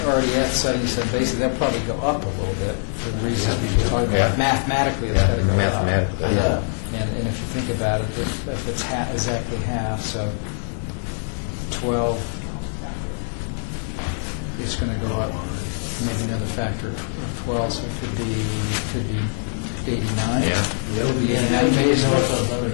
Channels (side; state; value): right; silent; digital silence